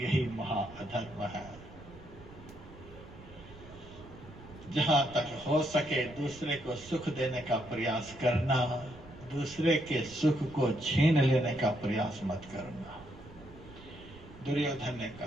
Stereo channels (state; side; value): noise; right; rumble, 19 dB below the sound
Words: महा अधर्म है। जहां तक हो सके दूसरे को सुख देने का प्रयास करना, दूसरे के सुख को छीन लेने का प्रयास मत करना। दुर्योधन ने